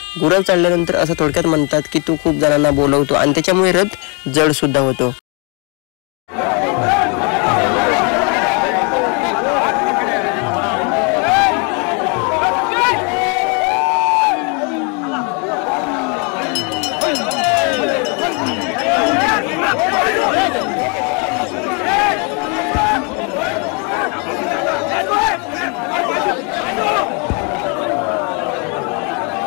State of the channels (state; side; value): quieter; right; 34.9 dB